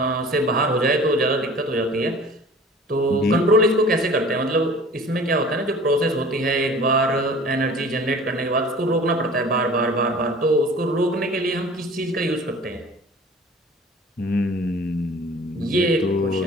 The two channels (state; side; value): normal; both; correlation 0.45